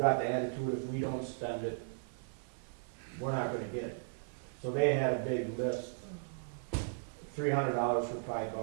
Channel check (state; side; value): silent; left; 53 dB below the other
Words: the attitude if we don't spend it, we're not gonna get it. So they had a big list, $300 for pry